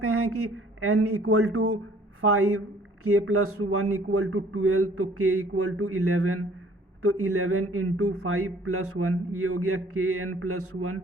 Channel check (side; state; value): both; normal; correlation 0.56